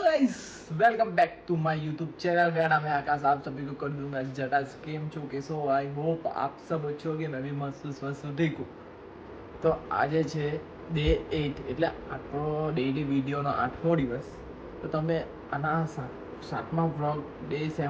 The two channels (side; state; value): both; identical; correlation 1.00